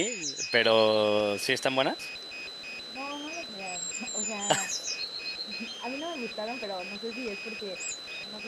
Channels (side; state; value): both; identical; correlation 1.00